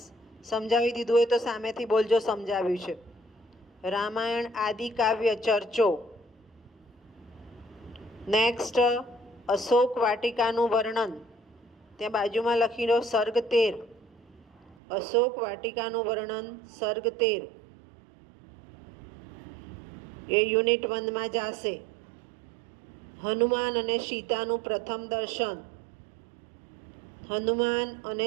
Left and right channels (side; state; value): left; drops out; at 14.8 s